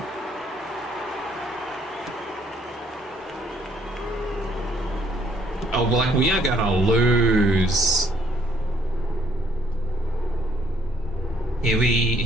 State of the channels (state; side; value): normal; both; correlation 0.65